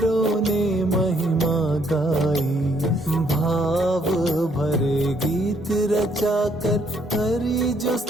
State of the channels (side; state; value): both; normal; correlation 0.69